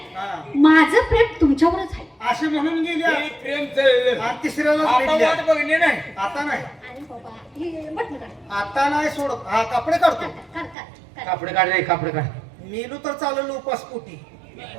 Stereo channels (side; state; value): left; drops out; at 10.8 s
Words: हा. माझं प्रेम तुमच्यावरच आहे. असे म्हणून गेल्या हे प्रेम चाललं. आणि तिसऱ्याला आता भेटल्या. वाट बघणे नाही. आता नाही, अरे बाबा, हे बटणं काढ. आता नाही सोडत. हा कपडे काढतो. काढ, काढ, काढ. कापडे काढ रे, कापडे काढ. मेलू तर चालवलं उपास पोटी,